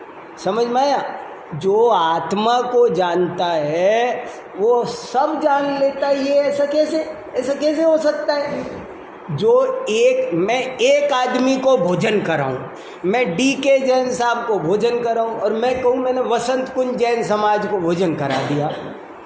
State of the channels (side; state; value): both; identical; correlation 1.00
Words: समझ में आया? जो आत्मा को जानता है वो सब जान लेता है, ये ऐसा कैसे हो सकता है? मैं एक आदमी को भोजन कराऊं, मैं DK जैन साहब को भोजन कराऊं, और मैं कहूं मैंने वसंत कुंज जैन समाज को भोजन करा दिया,